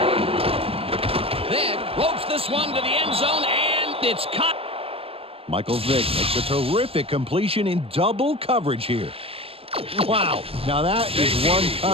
Ropes this one to the end zone, and it's caught. Michael Vick makes a terrific completion in double coverage here. Wow. Now that is one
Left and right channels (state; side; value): late; left; 0.27 ms